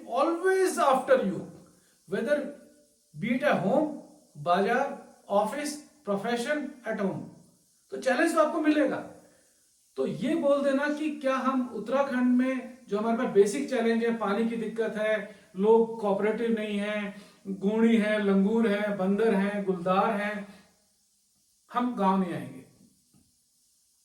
always after you, whether be it at home, बाजार, ऑफिस, प्रोफेशन, एट होम, तो चैलेंज तो आपको मिलेगा। तो ये बोल देना कि क्या हम उत्तराखंड में जो हमारे पास बेसिक चैलेंज है, पानी की दिक्कत है, लोग कोऑपरेटिव नहीं है, गूणी है, लंगूर है, बंदर है, गुलदार है, हम गांव नहीं आएंगे।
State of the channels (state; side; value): identical; both; correlation 1.00